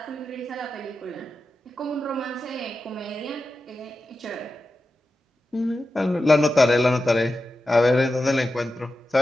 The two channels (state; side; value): normal; both; correlation 0.92